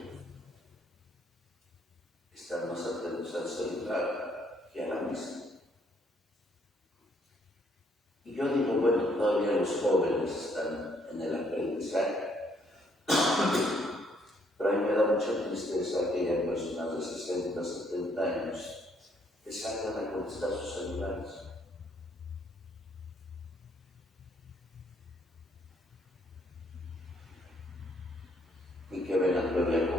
que están más atentos al celular que a la misa. Y yo digo, bueno, todavía los jóvenes están en el aprendizaje. Pero a mí me da mucha tristeza que haya personas de 60, 70 años que salgan a contestar sus celulares. Y que vengan todavía a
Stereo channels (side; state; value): both; normal; correlation 0.68